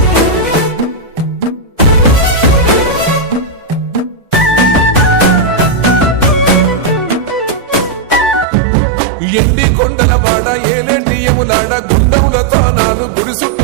ఎండి కొండల వాడ, ఏలేటి యములాడ, గుండముల తానాలు, గుడి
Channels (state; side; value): drops out; left; at 8.5 s